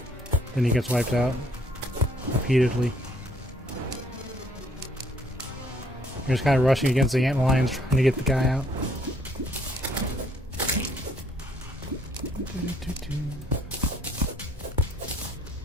then he gets wiped out repeatedly. You're just kind of rushing against the ant lions trying to get the guy out.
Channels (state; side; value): normal; both; correlation 0.64